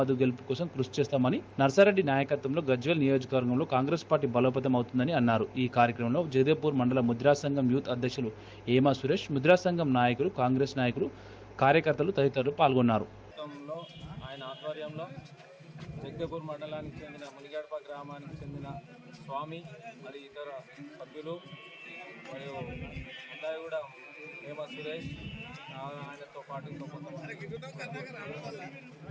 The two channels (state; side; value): identical; both; correlation 1.00